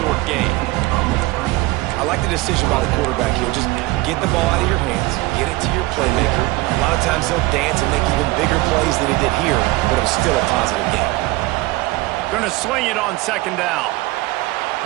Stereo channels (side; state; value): left; quieter; 20.4 dB